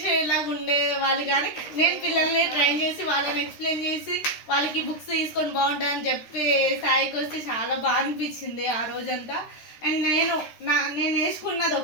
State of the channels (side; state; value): right; late; 13 ms